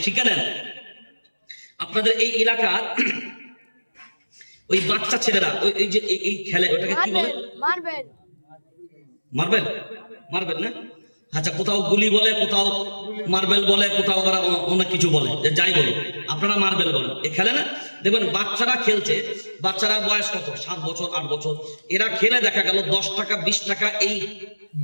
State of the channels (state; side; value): inverted; both; correlation -1.00